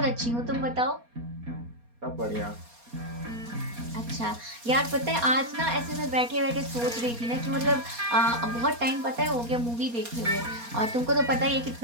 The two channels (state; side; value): late; left; 4.2 ms